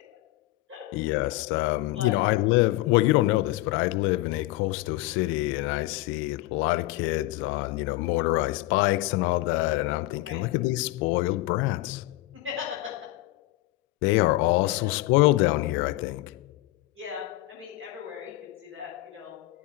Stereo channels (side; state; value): right; quieter; 18.2 dB